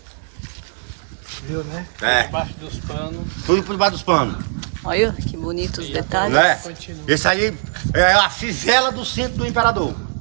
Viu, né? É. Debaixo dos panos. Tudo por debaixo dos panos. Olha que bonitos detalhes. Não é? Continua. Esse aí é a fivela do centro do imperador.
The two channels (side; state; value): left; silent; digital silence